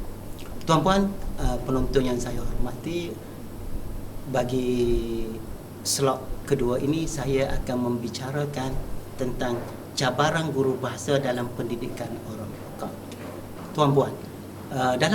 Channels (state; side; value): identical; both; correlation 1.00